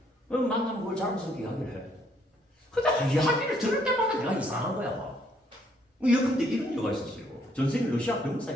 만나면 그걸 자랑스럽게 이야기를 해. 근데 이야기를 들을 때마다 내가 이상한 거야. 근데 이런 이유가 있었어요. 전생이 러시아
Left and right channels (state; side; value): normal; both; correlation 0.68